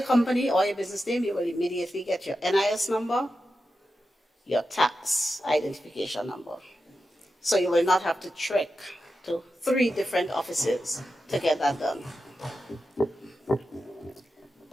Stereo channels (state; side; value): normal; both; correlation 0.90